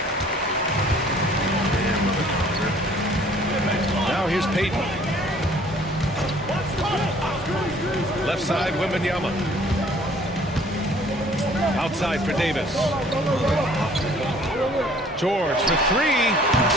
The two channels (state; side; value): normal; both; correlation 0.56